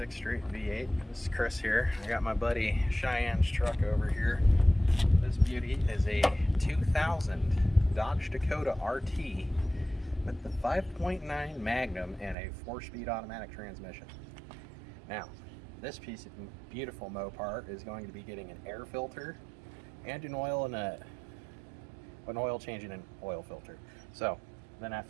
Street V8. This is Kris here. I got my buddy Cheyenne's truck over here. This beauty is a 2000 Dodge Dakota RT with the 5.9 Magnum and a 4-speed automatic transmission. Now, this piece of beautiful Mopar is going to be getting an air filter and an oil change and an oil filter. So then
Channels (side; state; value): left; drops out; at 12.4 s